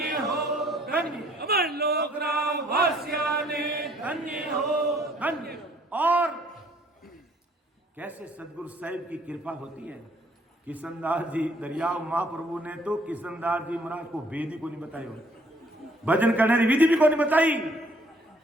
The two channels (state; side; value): normal; both; correlation 0.62